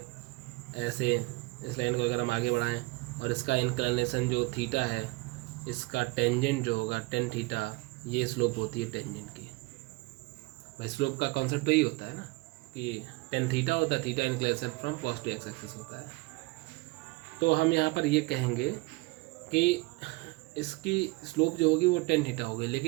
ऐसे, इस लाइन को अगर हम आगे बढ़ाएं और इसका इंक्लिनेशन जो थीटा है, इसका टेंजेंट जो होगा टेन थीटा, ये स्लोप होती है टेंजेंट की। भाई स्लोप का कॉन्सेप्ट तो यही होता है ना कि टेन थीटा होता है, theta inclination from positive x axis होता है। तो हम यहाँ पर ये कहेंगे कि इसकी स्लोप जो होगी वो टेन थीटा होगी,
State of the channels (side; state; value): left; quieter; 23.9 dB